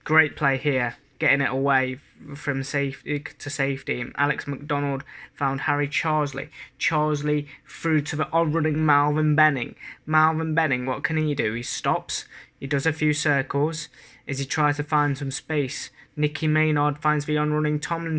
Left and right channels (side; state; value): both; identical; correlation 1.00